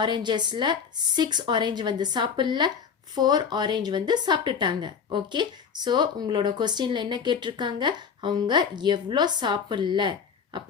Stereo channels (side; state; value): right; quieter; 6.6 dB